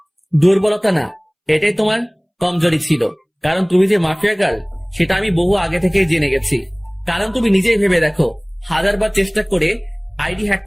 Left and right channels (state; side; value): identical; both; correlation 1.00